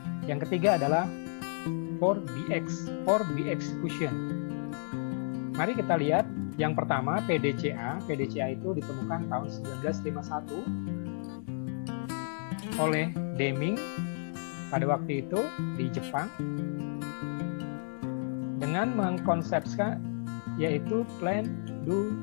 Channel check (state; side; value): silent; right; 56 dB below the other